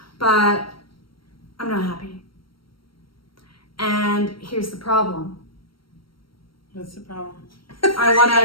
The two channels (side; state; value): right; late; 0.74 ms